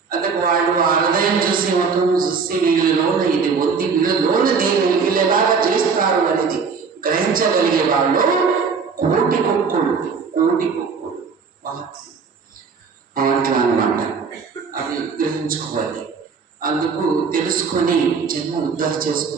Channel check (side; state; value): left; quieter; 5.5 dB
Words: అందుకు వాళ్ళు ఆ హృదయం చూసి మొత్తం చూసి వీళ్ళలోన ఇది వద్ది, వీళ్ళలోన దీన్ని వీళ్ళు ఎలాగా చేస్తారు అనేది గ్రహించగలిగే వాళ్ళు కోటి కుక్కుడు మహాత్ములు అట్లా అన్నమాట. అది గ్రహించుకోవాలి. అందుకు తెలుసుకొని జన్మ ఉద్ధరణ